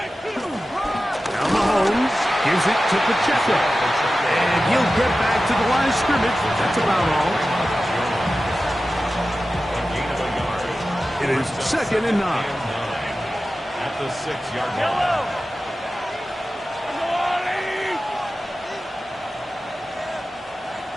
Mahomes gives it to Pacheco. And he'll get back to the line of scrimmage. That's about all. It is second and 9. At the 6-yard line.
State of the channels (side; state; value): both; normal; correlation 0.94